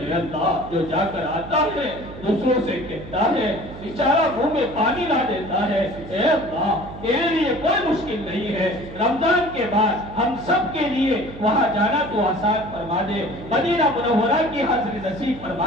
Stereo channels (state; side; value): noise; right; hum, 14 dB below the sound